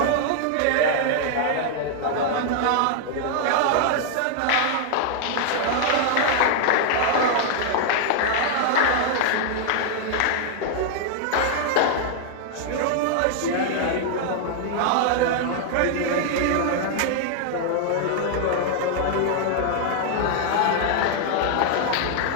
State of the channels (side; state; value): both; different; correlation -0.01